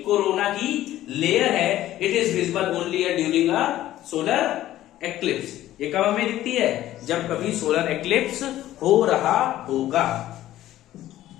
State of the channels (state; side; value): quieter; right; 13.9 dB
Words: कोरोना की लेयर है। It is visible only during a solar eclipse. ये कब हमें दिखती है? जब कभी सोलर एक्लिप्स हो रहा होगा।